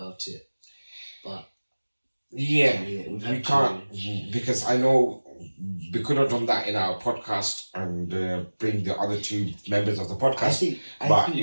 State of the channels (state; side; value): inverted; both; correlation -1.00